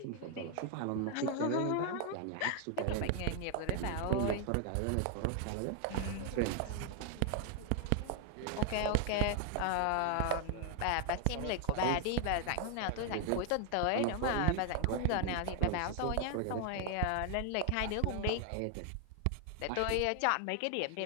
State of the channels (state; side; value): different; both; correlation 0.00